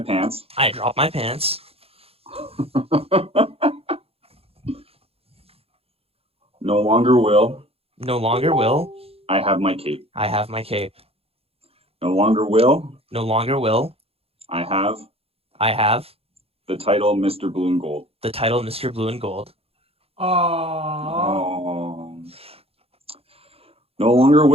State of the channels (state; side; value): late; left; 0.28 ms